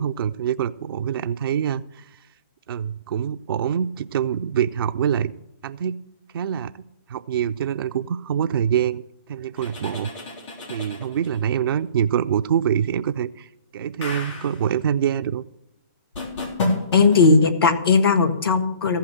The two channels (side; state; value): both; inverted; correlation -0.49